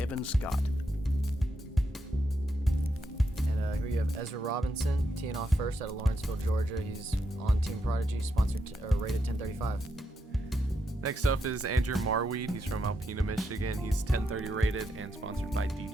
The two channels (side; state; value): both; normal; correlation 0.82